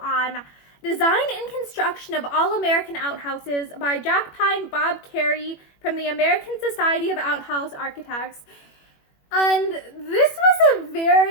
Design and Construction of All-American Outhouses by Jackpine Bob Cary from the American Society of Outhouse Architects. And this was a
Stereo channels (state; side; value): late; right; 21 ms